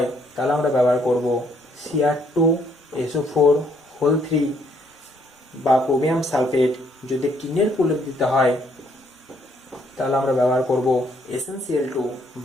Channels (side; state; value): both; normal; correlation 0.68